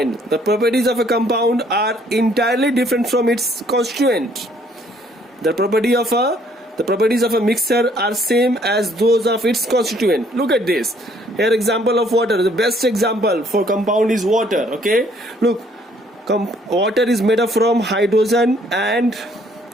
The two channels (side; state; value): both; normal; correlation 0.63